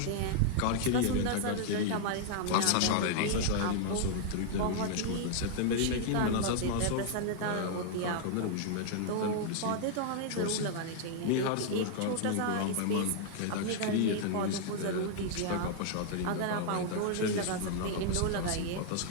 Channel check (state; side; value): different; both; correlation -0.01